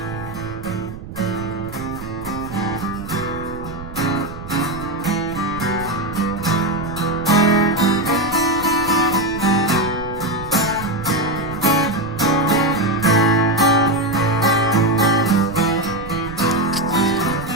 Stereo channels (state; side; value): noise; right; rumble, 13 dB below the sound